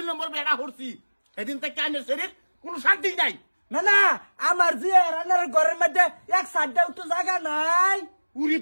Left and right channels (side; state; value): both; inverted; correlation -1.00